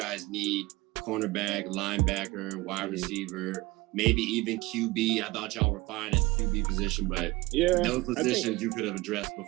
need cornerback, linebacker, wide receiver, maybe even QB. I thought y'all were fine at the QB position, but those positions you could have addressed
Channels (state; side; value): quieter; left; 21.2 dB